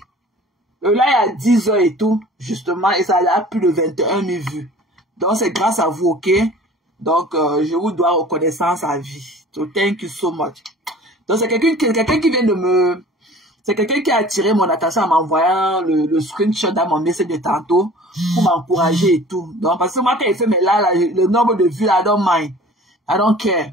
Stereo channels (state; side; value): normal; both; correlation 0.46